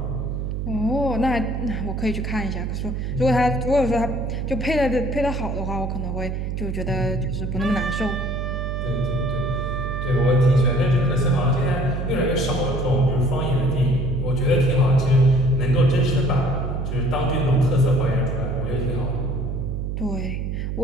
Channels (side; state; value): right; noise; hum, 3 dB below the sound